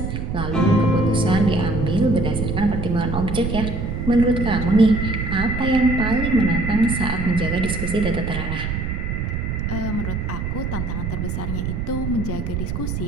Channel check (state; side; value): noise; right; rumble, 3 dB below the sound